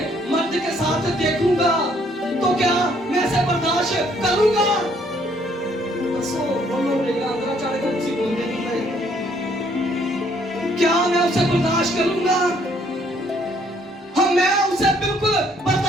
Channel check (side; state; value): both; normal; correlation 0.65